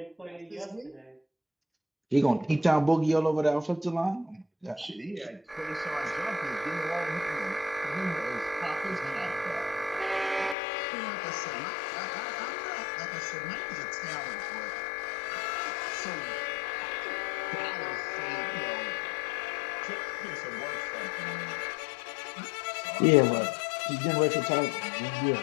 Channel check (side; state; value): right; drops out; at 10.6 s